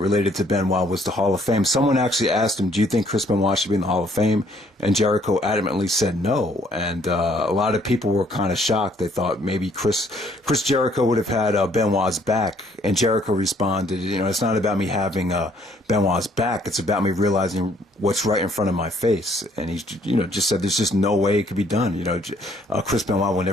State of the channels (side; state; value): both; normal; correlation 0.64